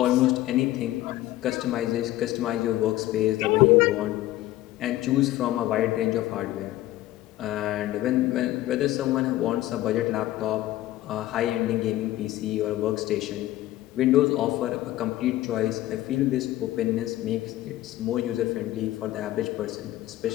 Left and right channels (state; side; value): quieter; right; 15.4 dB